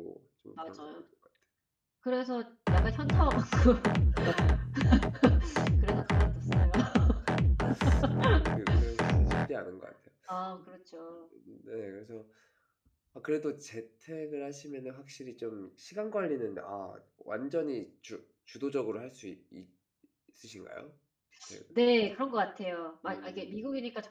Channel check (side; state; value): both; identical; correlation 1.00